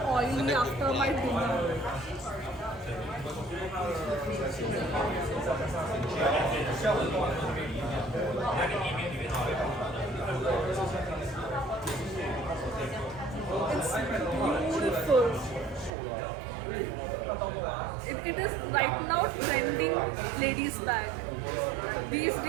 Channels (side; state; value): left; drops out; at 15.9 s